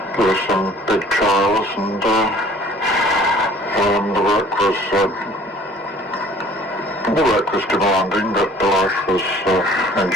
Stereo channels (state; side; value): normal; both; correlation 0.53